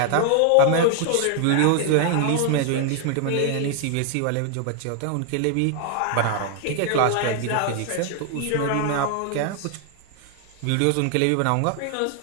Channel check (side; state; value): both; different; correlation 0.00